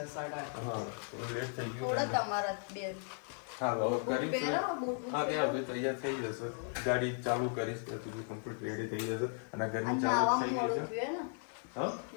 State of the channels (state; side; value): silent; right; 54 dB below the other